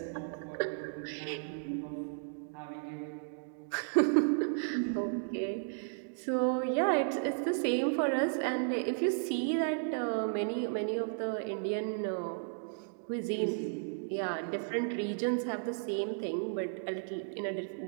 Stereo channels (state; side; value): silent; left; digital silence